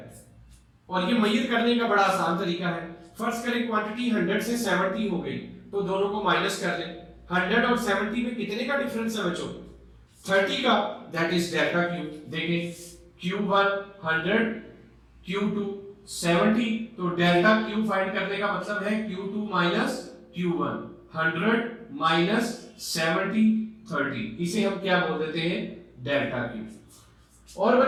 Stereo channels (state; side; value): identical; both; correlation 1.00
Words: और ये मेजर करने का बड़ा आसान तरीका है। फर्स्ट करें क्वांटिटी 100 से 70 हो गई, तो दोनों को माइनस कर लें। 100 और 70 में कितने का डिफरेंस है बच्चों, 30 का, दैट इज डेल्टा क्यू। देखें Q1 100, Q2 70, तो डेल्टा क्यू फाइंड करने का मतलब है Q2 माइनस Q1, 100 माइनस 70 30, इसे हम क्या बोल देते हैं, डेल्टा क्यू। और